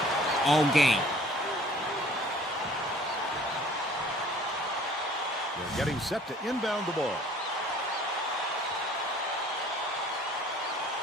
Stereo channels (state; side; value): normal; both; correlation 0.52